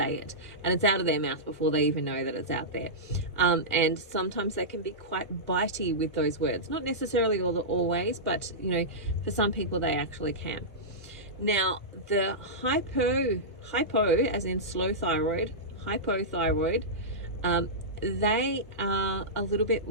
it, and it's out of their mouth before they even know that it's out there. And sometimes they can be quite bitey with those words, not necessarily always, but you know, for some people they actually can. Now, the hypo as in slow thyroid, hypothyroid, they are a little bit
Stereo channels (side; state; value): both; normal; correlation -0.14